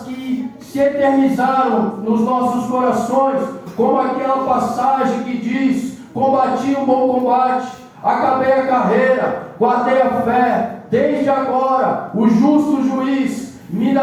que se eternizaram nos nossos corações, como aquela passagem que diz: combati o bom combate, acabei a carreira, guardei a fé. Desde agora o justo juiz me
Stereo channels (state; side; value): identical; both; correlation 1.00